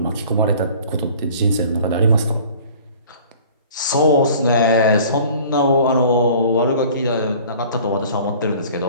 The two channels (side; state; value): both; inverted; correlation -0.48